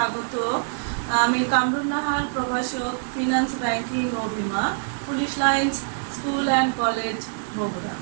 আমি কামরুন নাহার, প্রভাষক, ফিনান্স, ব্যাংকিং ও বিমা, police lines school and college, Bogura.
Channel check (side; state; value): left; silent; 57 dB below the other